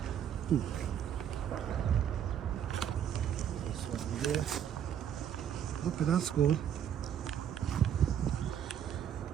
This one there. Okay, that's good.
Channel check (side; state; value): left; quieter; 9.3 dB